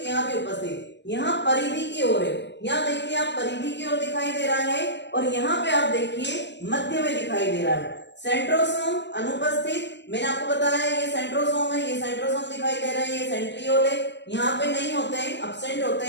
यहाँ भी उपस्थित। यहाँ परिधि की ओर है, यहाँ देखिए आप परिधि की ओर दिखाई दे रहा है, और यहाँ पे आप देखिए मध्य में दिखाई दे रहा है। सेंट्रोसोम अनुपस्थित, मैंने आपको बताया ये सेंट्रोसोम है, ये सेंट्रोसोम दिखाई दे रहा है, ये सेंट्रियोल है। यहाँ पे नहीं होते हैं, एब्सेंट होते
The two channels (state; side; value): late; right; 0.51 ms